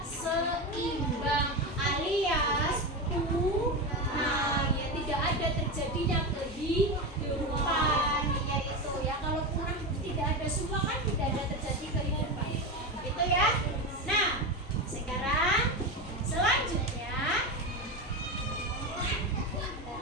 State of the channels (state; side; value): normal; both; correlation 0.18